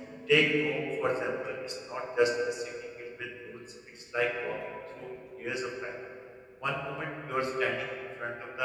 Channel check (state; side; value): identical; both; correlation 1.00